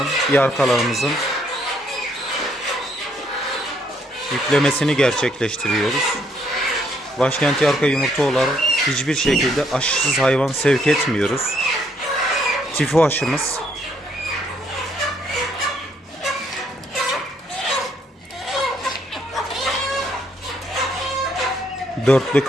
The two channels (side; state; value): both; normal; correlation 0.70